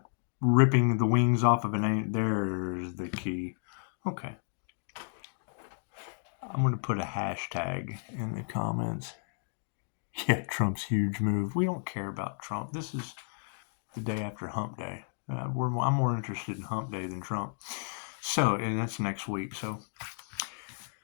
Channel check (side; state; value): right; silent; digital silence